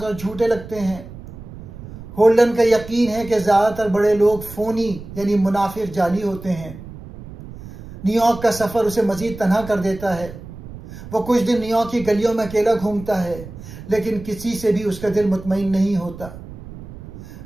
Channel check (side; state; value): right; noise; rumble, 14 dB below the sound